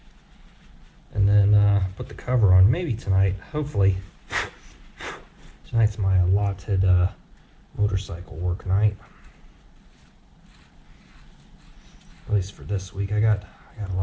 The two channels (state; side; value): identical; both; correlation 1.00